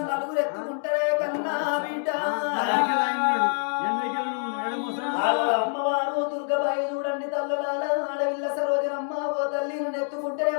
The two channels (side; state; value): right; silent; digital silence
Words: నలుగురు ఎత్తుకుంటారే కన్నా బిడ్డ. అమ్మవారు దుర్గబాయి చూడండి తల్లులాల ఆడవిల్ల సరోజనమ్మ ఓ తల్లి ఎత్తుకుంటేనే